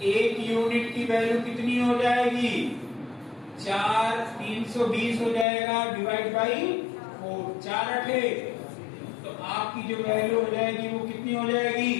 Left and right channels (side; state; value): right; drops out; at 5.5 s